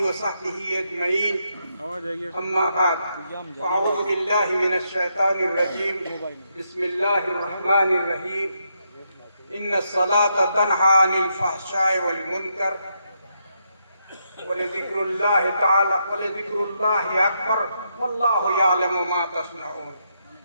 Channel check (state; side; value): inverted; both; correlation -0.79